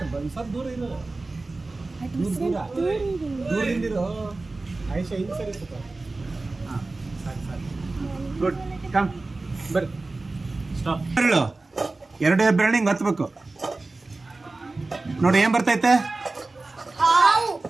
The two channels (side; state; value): left; quieter; 3.3 dB